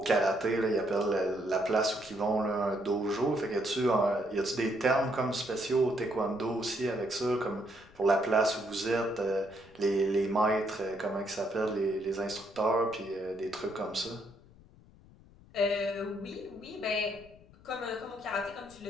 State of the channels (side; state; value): left; noise; rumble, 24 dB below the sound